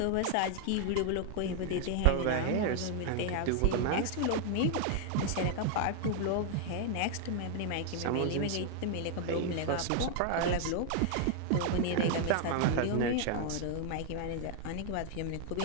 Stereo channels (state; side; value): different; both; correlation 0.00